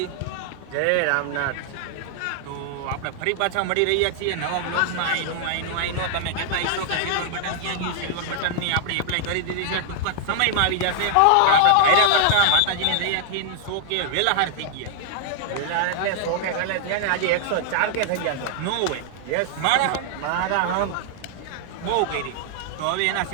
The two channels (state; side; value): different; both; correlation 0.00